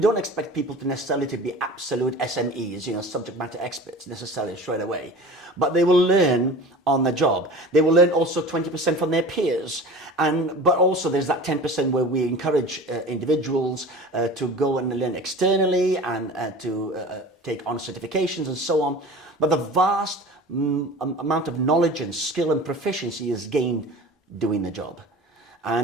don't expect people to necessarily to be absolute SMEs, subject matter experts necessarily straight away. But they will learn on the job. They will learn also 20% from their peers. But also there's that 10% where we encourage individuals to go and learn externally and to take on certifications and so on. But the vast amount of knowledge and skill and proficiency is gained doing the job.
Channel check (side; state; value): both; normal; correlation 0.37